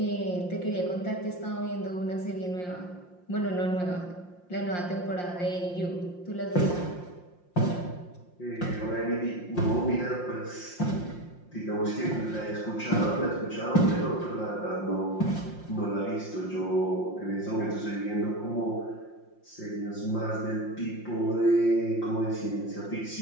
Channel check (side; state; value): right; late; 5.6 ms